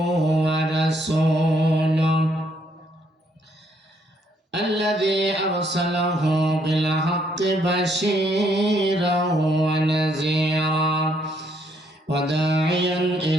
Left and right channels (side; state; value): both; normal; correlation 0.71